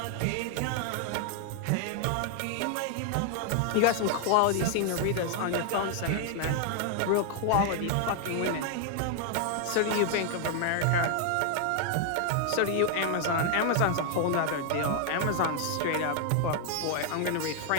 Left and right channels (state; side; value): different; both; correlation 0.00